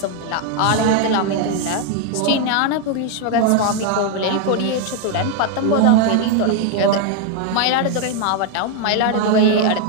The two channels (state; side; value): different; both; correlation 0.01